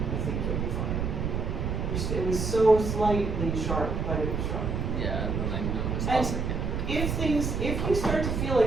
think you'll be fine. It was so slightly sharp, but it was sharp. Yeah, and then I noticed. And I was like, if you start to feel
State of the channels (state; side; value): noise; right; rumble, 1 dB below the sound